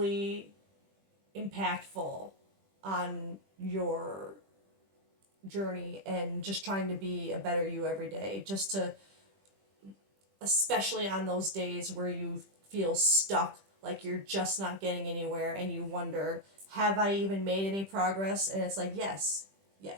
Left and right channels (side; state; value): left; late; 20 ms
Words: impactful on your journey and just trying to be a better you every day, just to, especially on those days where you feel stuck, like you're just not getting anywhere and you wonder, have I even made any progress? And it's like, yes,